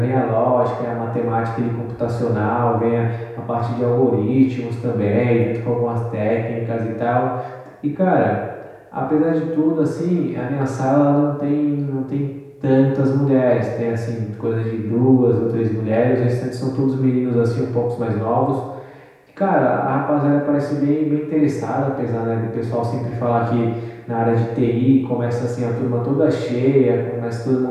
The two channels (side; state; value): both; identical; correlation 1.00